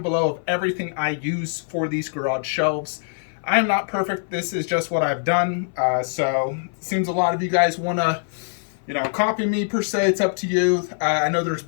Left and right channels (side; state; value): right; silent; 59 dB below the other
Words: below of everything I use for these garage shelves. I am not perfect. This is just what I've done. So it seems a lot of you guys want to copy me per se. It's up to you. I know there's